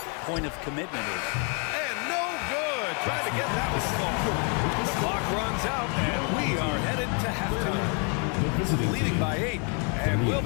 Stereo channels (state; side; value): quieter; right; 37.8 dB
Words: point of commitment is. And no good. Trying to get that one to fall. The clock runs out, and we are headed to halftime. Leading by 8. And we'll